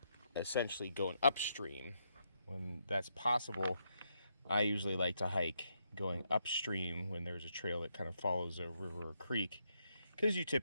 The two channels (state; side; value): inverted; both; correlation -0.79